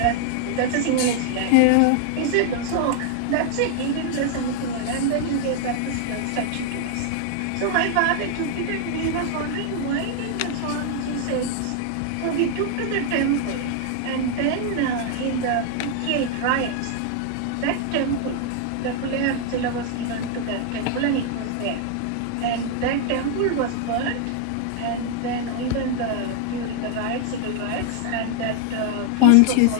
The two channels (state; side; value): different; both; correlation 0.00